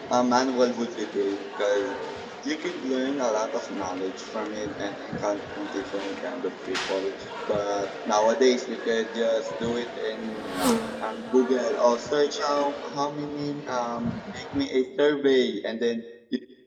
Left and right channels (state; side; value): identical; both; correlation 1.00